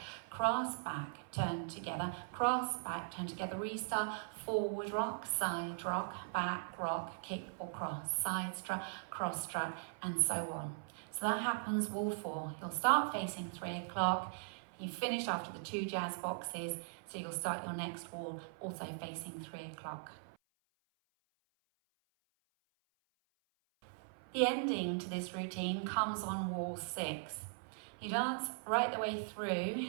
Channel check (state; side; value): silent; left; 51 dB below the other